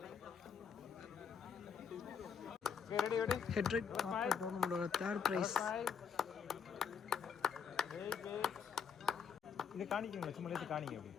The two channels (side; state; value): right; quieter; 6.7 dB